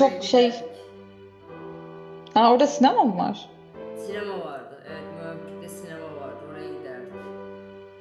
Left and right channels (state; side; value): identical; both; correlation 1.00